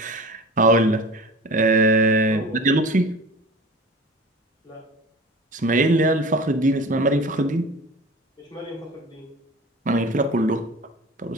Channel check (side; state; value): both; normal; correlation 0.36